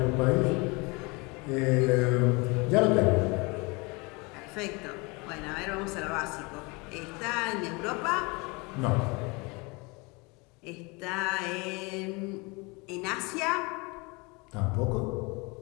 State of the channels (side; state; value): right; quieter; 27.7 dB